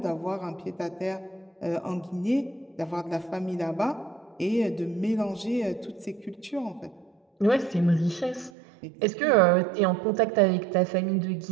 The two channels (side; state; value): left; drops out; at 8.5 s